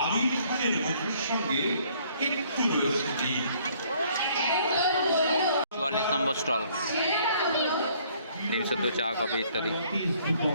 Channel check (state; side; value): inverted; both; correlation -0.62